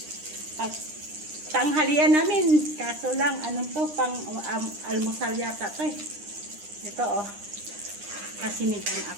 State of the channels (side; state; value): left; late; 9.8 ms